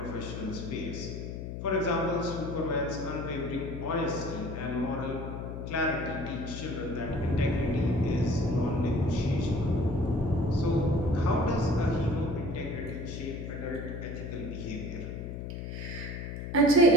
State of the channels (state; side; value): noise; left; hum, 7 dB below the sound